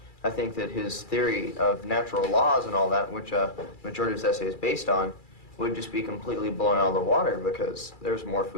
I think that his theory of natural laws and all that, which majority of his essay is based on, would just be completely blown out of the water because there's more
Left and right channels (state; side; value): late; right; 2.3 ms